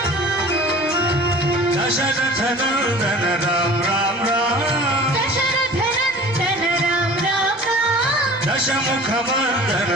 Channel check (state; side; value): noise; right; rumble, 28 dB below the sound